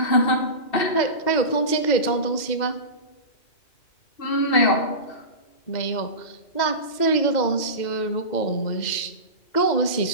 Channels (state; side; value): late; right; 2.1 ms